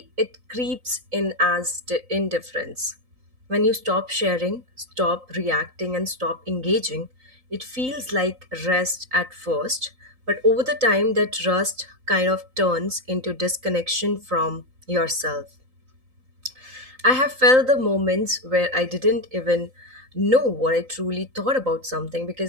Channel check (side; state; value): left; late; 3.9 ms